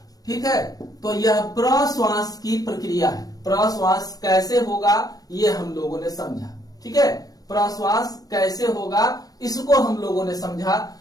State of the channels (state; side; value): late; right; 0.18 ms